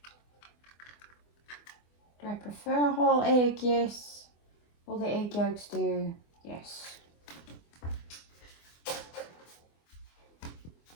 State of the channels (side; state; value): right; late; 24 ms